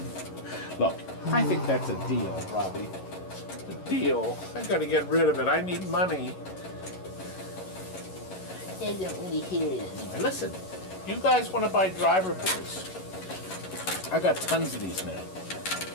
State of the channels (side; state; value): right; late; 11 ms